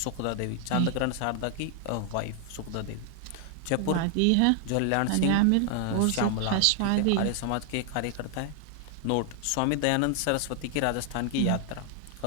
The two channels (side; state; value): both; different; correlation 0.00